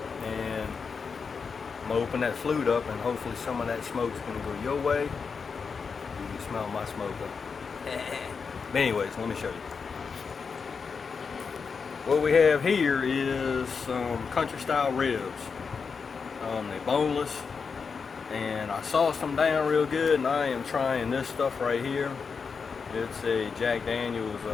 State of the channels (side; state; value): right; quieter; 5.5 dB